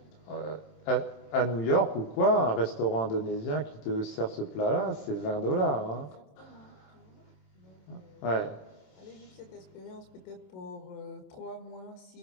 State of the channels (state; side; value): late; right; 27 ms